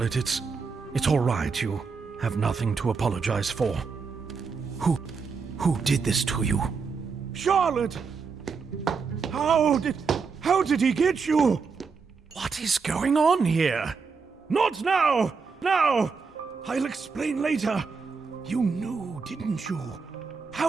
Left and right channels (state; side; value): quieter; left; 5.1 dB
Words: it's all right. You have nothing to apologize for. Who did this to you? Charlotte! How did he get you? What is going on here? Not now! Now! I'll explain later. You knew, didn't you?